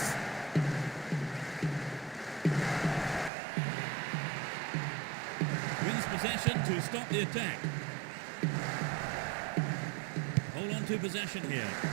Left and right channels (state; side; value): drops out; left; at 3.3 s